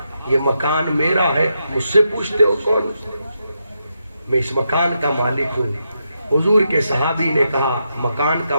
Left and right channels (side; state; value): both; inverted; correlation -0.83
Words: یہ مکان میرا ہے، مجھ سے پوچھتے ہو کون؟ میں اس مکان کا مالک ہوں. حضور کے صحابی نے کہا مکان کا